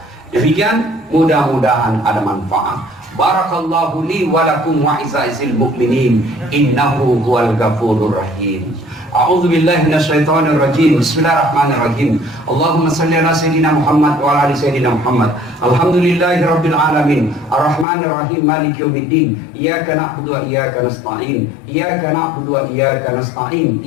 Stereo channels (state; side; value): drops out; right; at 17.9 s